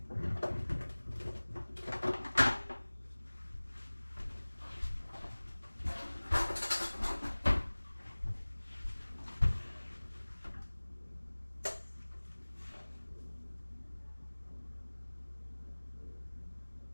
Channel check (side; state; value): both; inverted; correlation -1.00